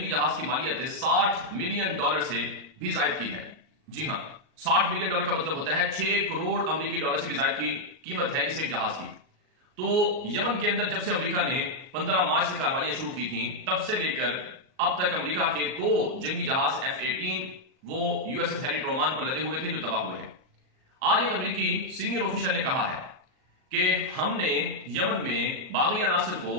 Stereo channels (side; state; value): left; late; 38 ms